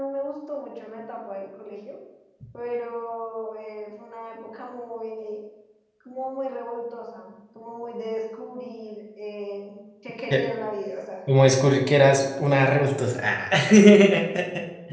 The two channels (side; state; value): both; identical; correlation 1.00